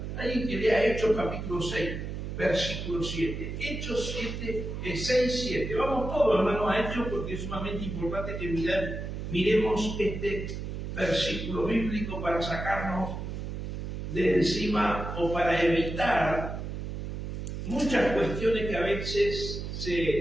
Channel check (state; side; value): noise; right; hum, 6 dB below the sound